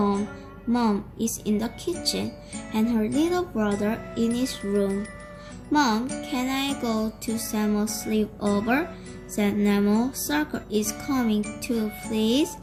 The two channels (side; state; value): both; identical; correlation 1.00